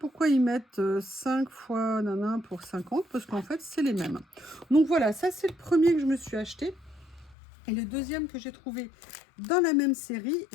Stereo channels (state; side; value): drops out; right; at 7.4 s